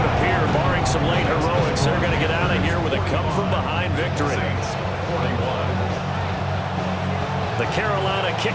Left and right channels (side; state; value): both; identical; correlation 1.00